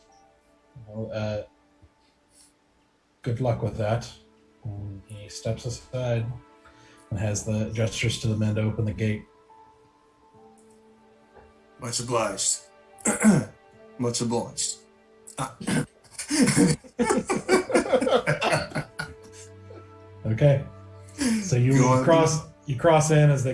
Well, good luck with that. And he steps aside and has the gestures to the men to open the gate. Much obliged. Much obliged. Okay. So you cross in as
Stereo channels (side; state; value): both; identical; correlation 1.00